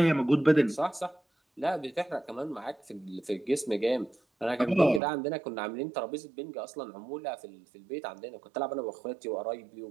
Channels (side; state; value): left; drops out; at 5.0 s